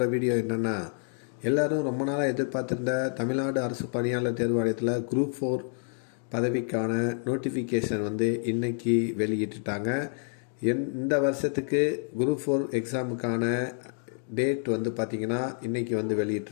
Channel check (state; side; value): silent; right; 59 dB below the other